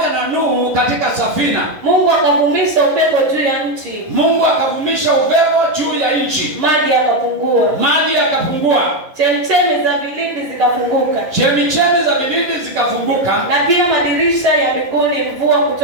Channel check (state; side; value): late; left; 11 ms